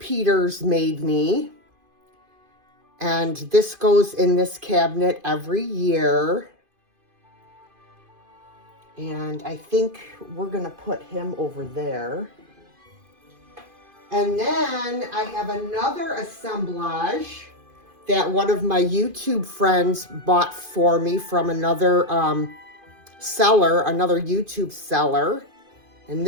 made me. And this goes in this cabinet every year. And I think we're going to put him over there. And then I have another assemblage that one of my YouTube friends bought for me from another seller, another YouTube seller. And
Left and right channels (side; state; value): left; late; 2.5 ms